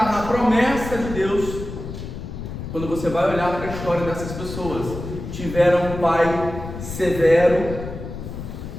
na promessa de Deus. Quando você vai olhar para a história dessas pessoas, tiveram um pai severo,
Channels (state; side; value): noise; left; rumble, 9 dB below the sound